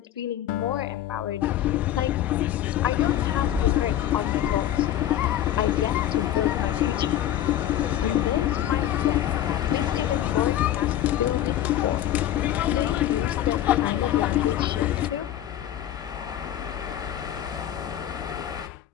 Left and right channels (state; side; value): quieter; right; 11.9 dB